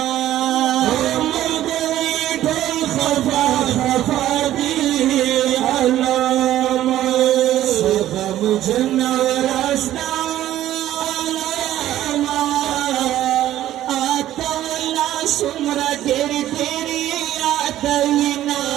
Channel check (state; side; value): quieter; left; 13.2 dB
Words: खफाती अलामा सगम जनवरस्ता अलामा आतवला सुमरा तेरी तेरी आतविना